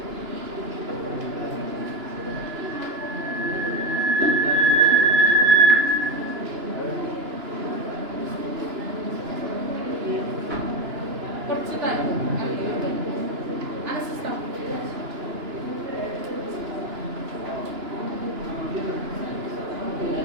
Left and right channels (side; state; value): left; late; 2.9 ms